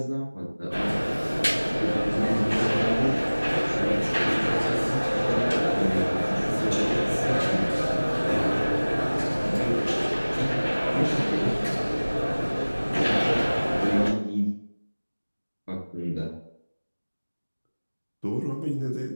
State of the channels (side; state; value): both; inverted; correlation -1.00